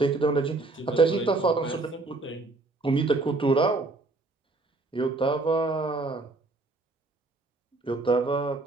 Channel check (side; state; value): left; quieter; 3.3 dB